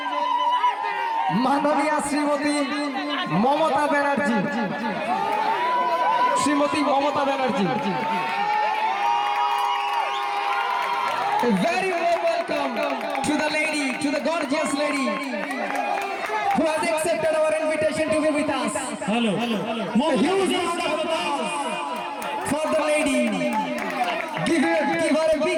মাননীয় Shrimati Mamata Banerjee. Shrimati Mamata Banerjee, a very warm welcome to the lady, to the gorgeous lady who has accepted our invitation to be with us. Hello. A huge round of applause for the lady. Give her a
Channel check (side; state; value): both; identical; correlation 1.00